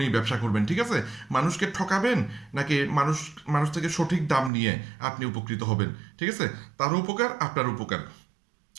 ব্যবসা করবেন। ঠিক আছে, মানুষকে ঠকাবেন নাকি মানুষ থেকে সঠিক দাম নিয়ে আপনি উপকৃত হবেন। ঠিক আছে, তারও উপকার আপনার উপকার।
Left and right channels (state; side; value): drops out; left; at 4.5 s